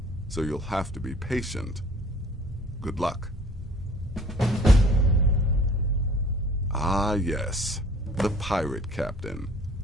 so you'll have to be patient. Good luck. Ah, yes, the pirate captain.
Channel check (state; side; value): normal; both; correlation 0.52